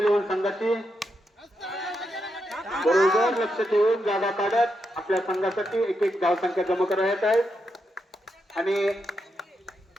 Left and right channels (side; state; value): both; normal; correlation 0.84